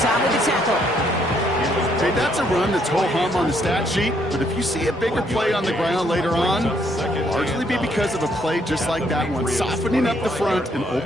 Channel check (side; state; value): both; normal; correlation 0.70